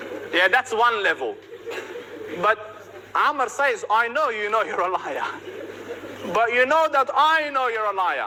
Yeah, that's one level. But Amr says, I know you know you're a liar. But you know that I know you're a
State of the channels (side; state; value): both; identical; correlation 1.00